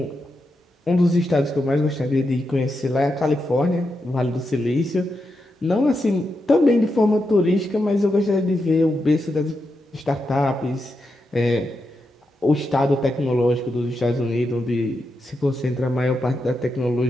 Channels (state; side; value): normal; both; correlation 0.86